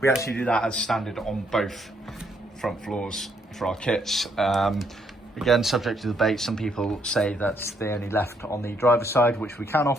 actually do that as standard on both front floors for our kits. Again, subject to debate. Some people say that they only left on the driver's side, which we can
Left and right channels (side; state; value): both; normal; correlation 0.72